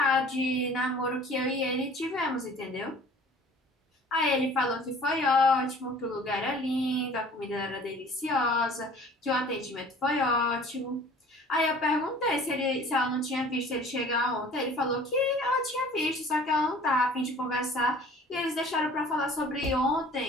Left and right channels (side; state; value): both; normal; correlation 0.48